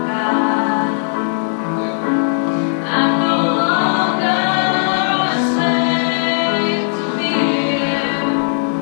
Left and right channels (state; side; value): silent; right; digital silence